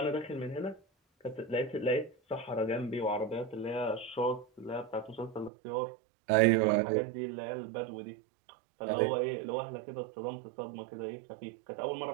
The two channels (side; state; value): left; drops out; at 5.5 s